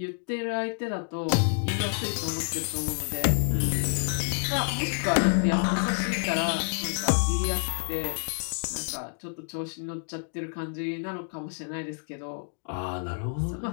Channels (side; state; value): right; silent; digital silence